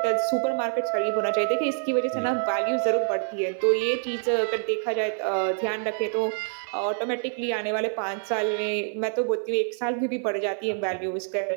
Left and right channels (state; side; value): silent; left; 61 dB below the other